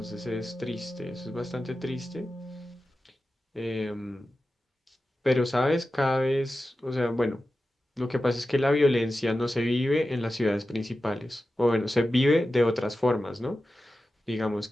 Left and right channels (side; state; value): both; normal; correlation 0.93